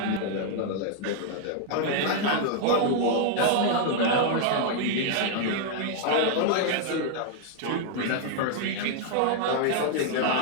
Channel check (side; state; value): both; different; correlation -0.01